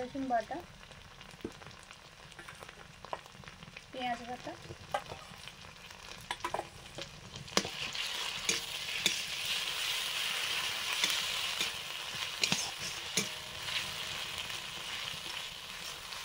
বাটা, পেঁয়াজ বাটা,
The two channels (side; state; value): both; identical; correlation 1.00